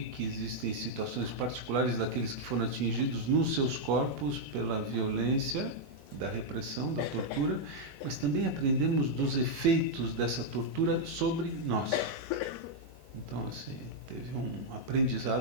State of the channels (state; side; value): normal; both; correlation -0.02